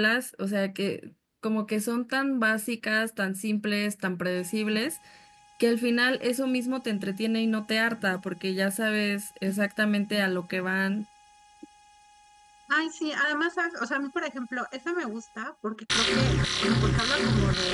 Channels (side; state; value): both; identical; correlation 1.00